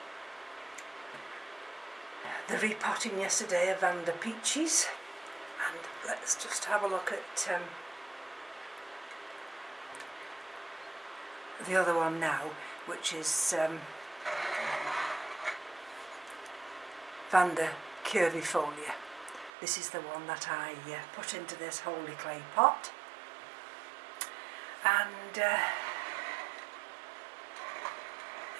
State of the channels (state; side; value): drops out; left; at 19.5 s